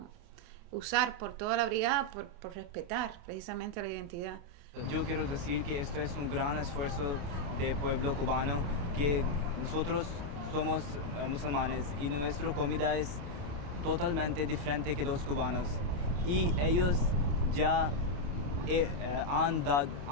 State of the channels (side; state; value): left; late; 28 ms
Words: usar por toda la brigada por respetar precisamente la identidad. Yo quiero decir que esto es un gran esfuerzo del pueblo cubano, que nosotros somos musulmanes y nuestra comida es totalmente diferente que los cubanos, y ellos ya han